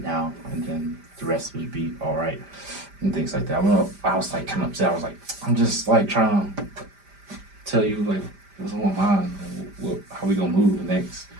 now, and then the rest would be all right and things like that. I was like kind of upset. I was like, I'm just like trying to tell you like what's on my mind, how we gonna move next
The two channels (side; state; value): left; late; 5.0 ms